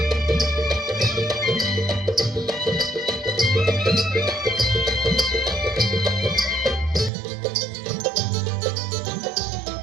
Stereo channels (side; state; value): left; drops out; at 7.1 s